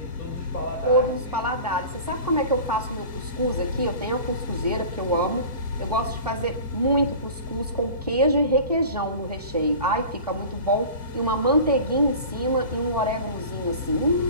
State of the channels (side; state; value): both; inverted; correlation -0.38